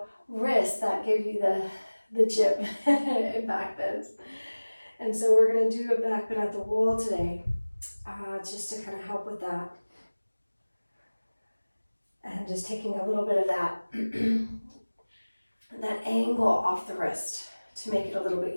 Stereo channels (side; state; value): both; inverted; correlation -1.00